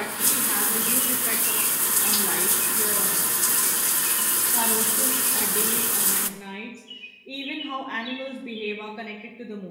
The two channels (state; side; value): identical; both; correlation 1.00